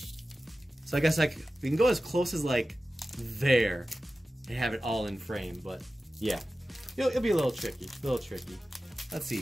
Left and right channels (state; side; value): normal; both; correlation 0.95